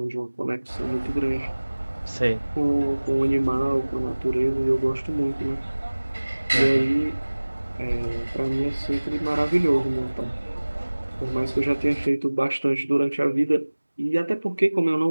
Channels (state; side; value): inverted; both; correlation -1.00